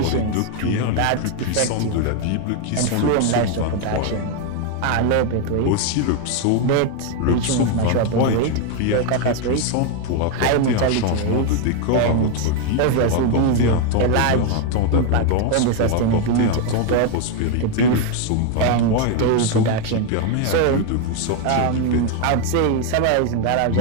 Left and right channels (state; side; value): different; both; correlation 0.01